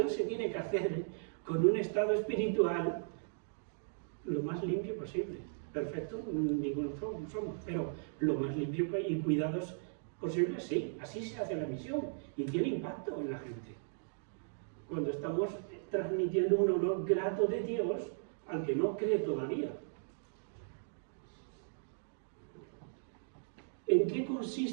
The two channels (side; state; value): left; silent; digital silence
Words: se tiene que hacer con un estado espiritual lo más limpio posible. Perfecto, ninguno somos, pero lo más limpio y cuidados posible, sí. Así se hace la misión y tiene impacto en la gente. Cuando estamos transmitiendo un olor grato de Dios al que no cree todavía. ¿En qué